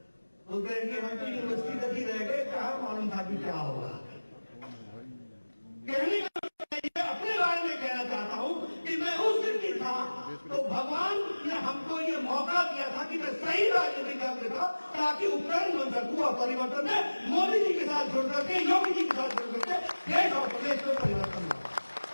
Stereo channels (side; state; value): both; inverted; correlation -1.00